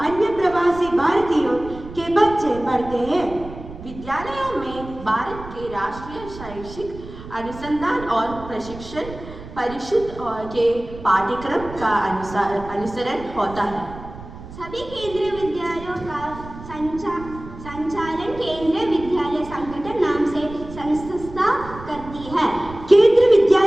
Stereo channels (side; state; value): right; noise; rumble, 14 dB below the sound